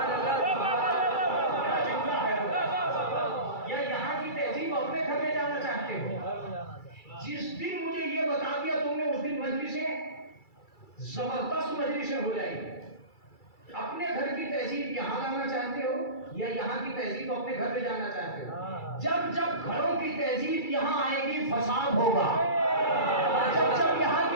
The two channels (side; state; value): right; late; 2.3 ms